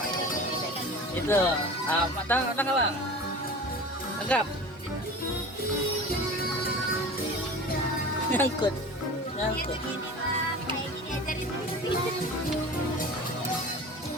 Itu, matang Abang. Tangkap. Nyangkut. Nyangkut. Kayak gini ajarin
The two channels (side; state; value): both; normal; correlation 0.36